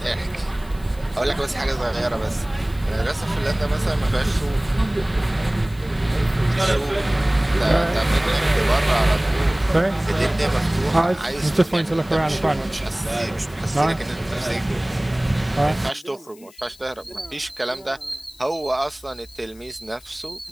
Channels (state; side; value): noise; left; hiss, 25 dB below the sound